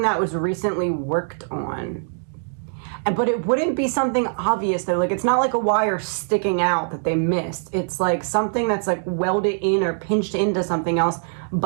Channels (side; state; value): left; silent; digital silence